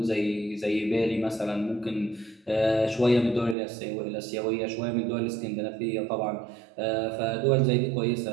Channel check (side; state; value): left; drops out; at 3.6 s